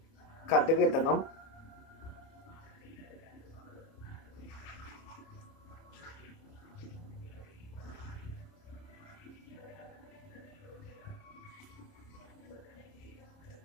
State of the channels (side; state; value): right; late; 30 ms